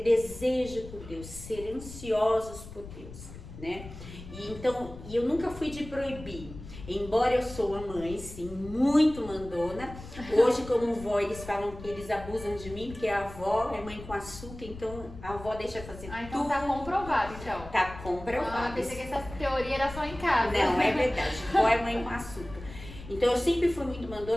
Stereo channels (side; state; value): left; noise; rumble, 14 dB below the sound